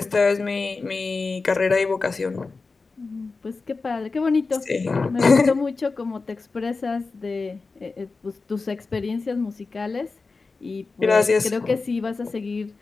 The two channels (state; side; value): quieter; right; 4.1 dB